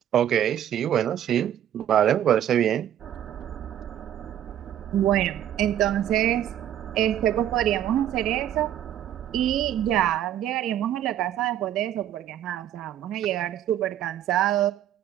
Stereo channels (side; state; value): left; quieter; 11.1 dB